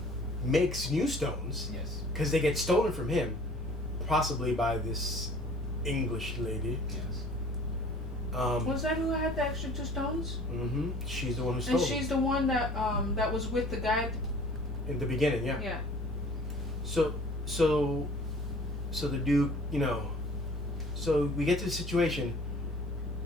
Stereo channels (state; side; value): normal; both; correlation 0.49